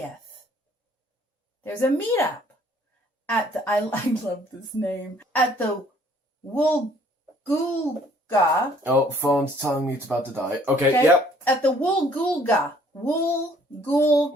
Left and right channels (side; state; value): both; normal; correlation 0.60